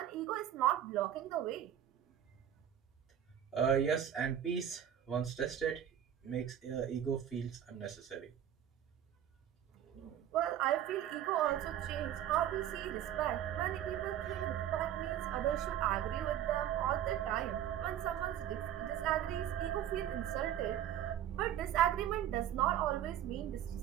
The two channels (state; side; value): quieter; left; 10.5 dB